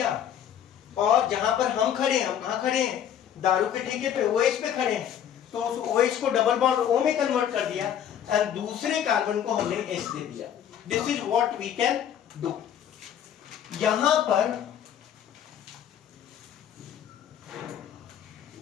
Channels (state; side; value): quieter; right; 9.5 dB